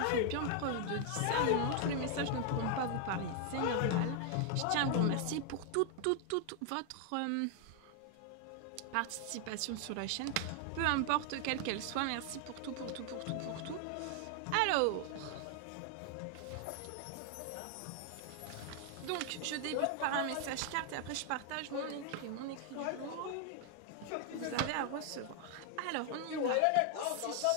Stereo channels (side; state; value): both; different; correlation 0.00